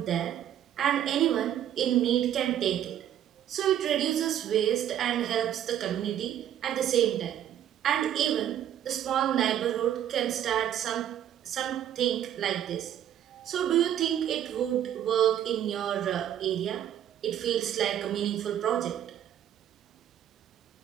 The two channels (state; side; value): quieter; left; 10.7 dB